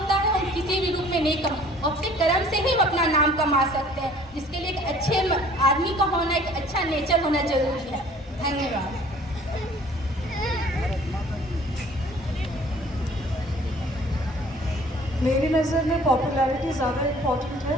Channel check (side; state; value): both; normal; correlation 0.52